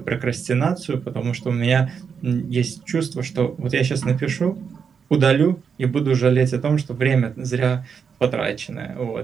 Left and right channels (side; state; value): left; quieter; 6.5 dB